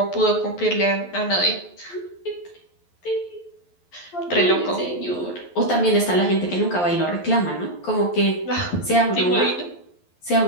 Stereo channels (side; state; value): right; late; 11 ms